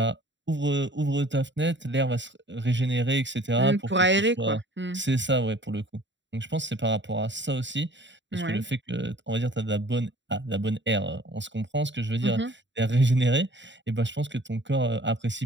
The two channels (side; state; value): left; late; 0.53 ms